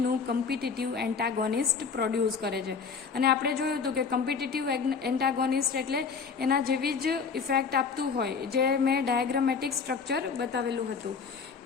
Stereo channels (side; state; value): right; quieter; 5.5 dB